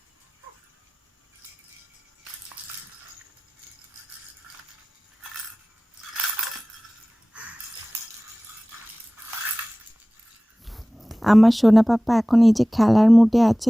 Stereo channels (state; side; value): normal; both; correlation 0.98